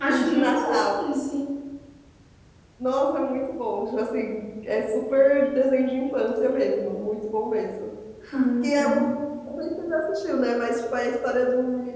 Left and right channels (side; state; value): both; identical; correlation 1.00